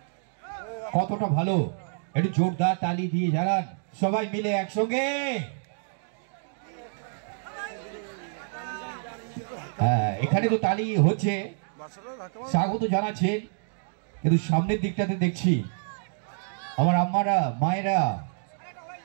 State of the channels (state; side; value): silent; left; digital silence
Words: কতটা ভালো একটু জোরদার তালি দিয়ে জানান সবাই মিলে একসঙ্গে। হ্যাঁ, এখানে তো তালি হচ্ছে, স্বাগত জানাচ্ছেন, কিন্তু সামনের দিকটাতে দেখছি আমার আম্মারা মায়েরা